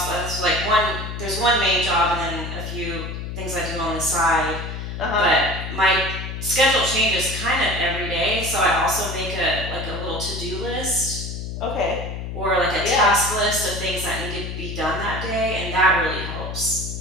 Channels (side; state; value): left; noise; hum, 6 dB below the sound